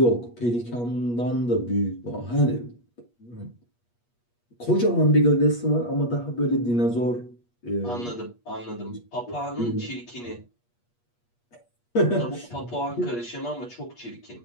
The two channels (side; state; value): right; late; 8.4 ms